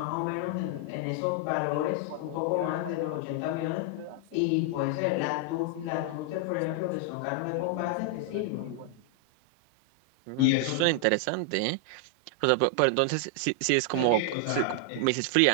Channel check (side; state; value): both; different; correlation 0.00